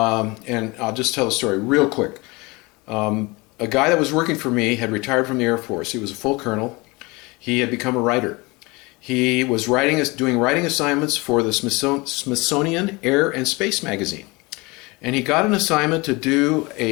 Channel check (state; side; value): quieter; right; 24.9 dB